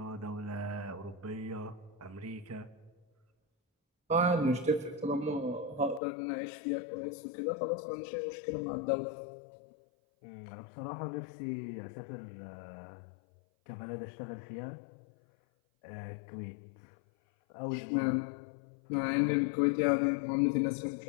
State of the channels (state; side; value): drops out; right; at 6.0 s